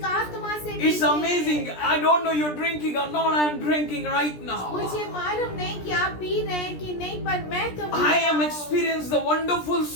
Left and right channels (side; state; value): right; late; 17 ms